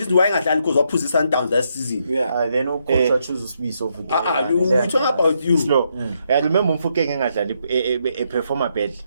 why not because of position down that season. Then no coach chooses to be so good. We talking about you. slow. I remember Mfukeng engadlali a performer bad.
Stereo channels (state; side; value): inverted; both; correlation -0.77